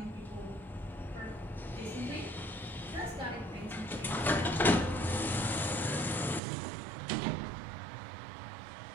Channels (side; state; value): left; drops out; at 6.4 s